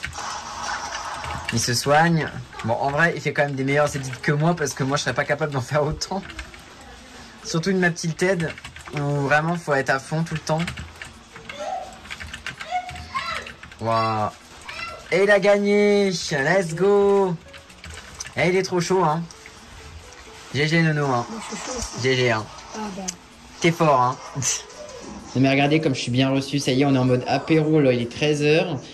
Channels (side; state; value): both; identical; correlation 1.00